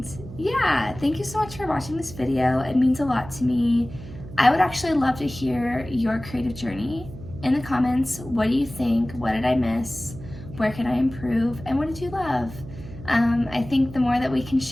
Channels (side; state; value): right; noise; hum, 14 dB below the sound